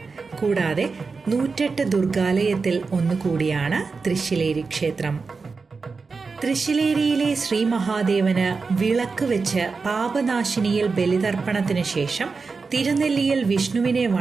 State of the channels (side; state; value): left; quieter; 4.6 dB